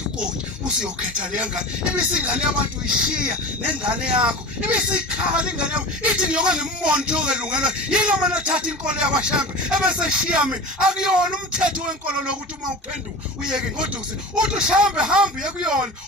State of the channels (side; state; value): both; normal; correlation 0.33